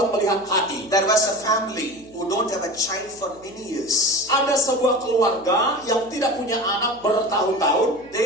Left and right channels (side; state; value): left; noise; hum, 27 dB below the sound